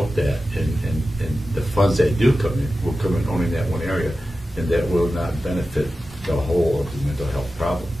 that, and the funds that do come in will come in only in that one area, and that will not benefit the whole of the mental health problem.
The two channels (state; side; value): normal; both; correlation 0.93